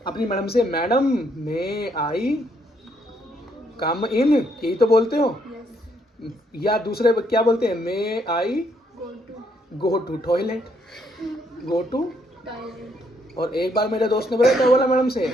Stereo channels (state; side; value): normal; both; correlation 0.72